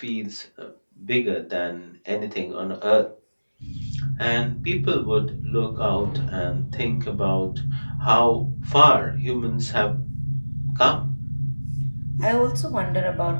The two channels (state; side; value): inverted; both; correlation -1.00